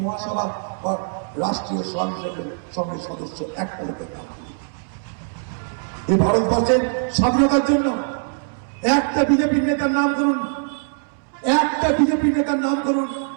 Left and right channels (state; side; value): silent; left; 64 dB below the other